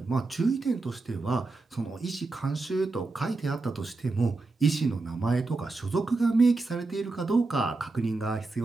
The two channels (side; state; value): left; quieter; 3.5 dB